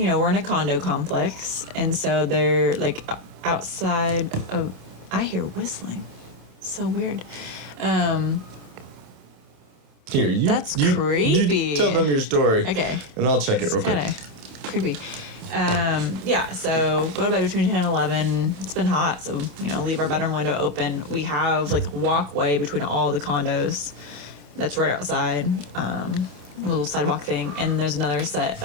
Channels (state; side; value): late; left; 27 ms